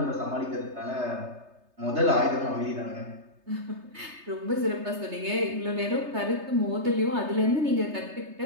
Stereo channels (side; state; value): left; late; 3.3 ms